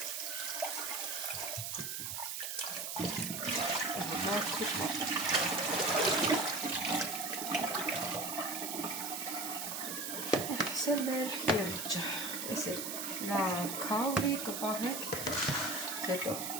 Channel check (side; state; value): right; noise; hiss, 4 dB below the sound